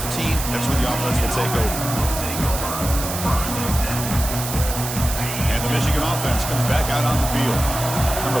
That's where the offense will take over. And the Michigan offense comes back out on the field.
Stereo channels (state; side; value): noise; right; hiss, 6 dB below the sound